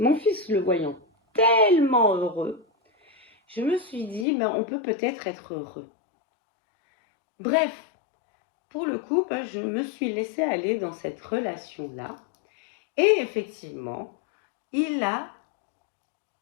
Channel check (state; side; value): drops out; right; at 4.2 s